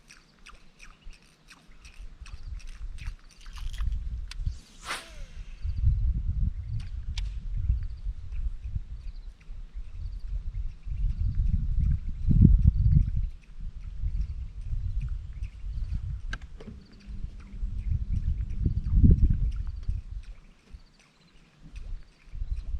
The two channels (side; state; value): both; identical; correlation 1.00